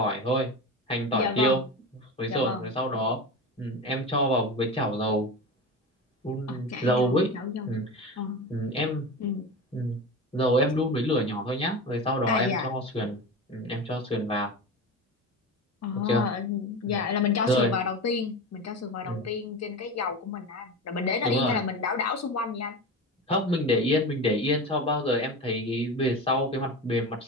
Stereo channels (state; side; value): normal; both; correlation 0.26